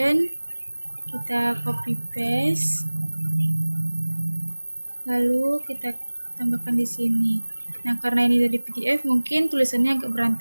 kita copy paste, lalu kita tambahkan di sini. Nah, karena ini dari PDF mungkin tulisannya agak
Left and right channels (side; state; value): both; inverted; correlation -1.00